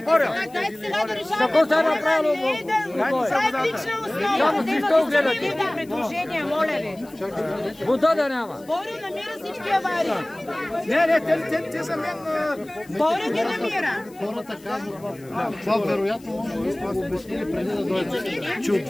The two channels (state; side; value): noise; left; hiss, 25 dB below the sound